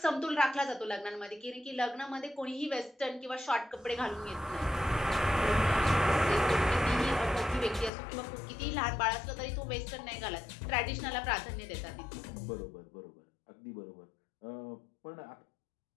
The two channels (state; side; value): drops out; right; at 7.9 s